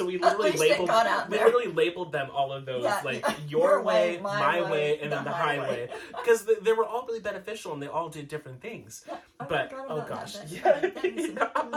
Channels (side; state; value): both; identical; correlation 1.00